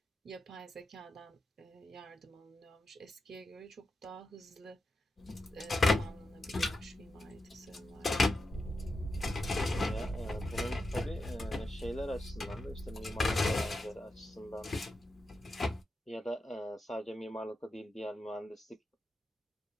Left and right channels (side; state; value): both; normal; correlation 0.88